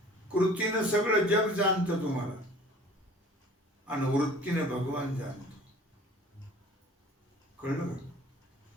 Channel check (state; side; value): normal; both; correlation 0.48